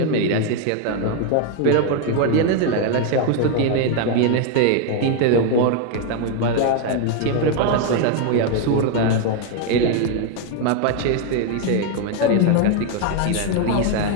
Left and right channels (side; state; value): both; different; correlation 0.01